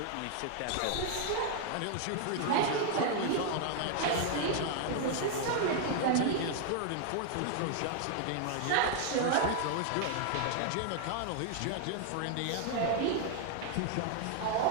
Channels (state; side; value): different; both; correlation 0.00